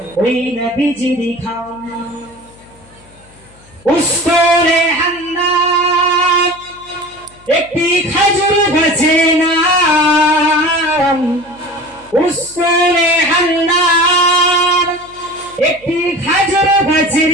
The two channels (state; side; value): noise; left; hum, 27 dB below the sound